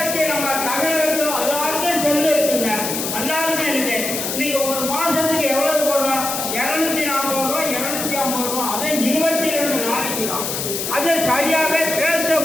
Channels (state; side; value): noise; left; hiss, 3 dB below the sound